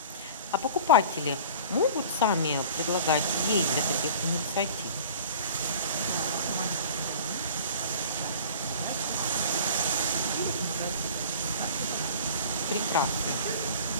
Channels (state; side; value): inverted; both; correlation -0.42